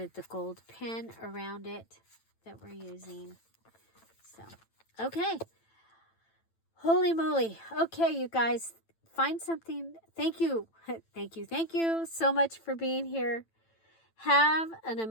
the gold pen around it that we're using. So, okay. Holy moly. Okay, you guys. Find something. Thank you. Thank you so much for being here. Have an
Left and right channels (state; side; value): late; right; 9.0 ms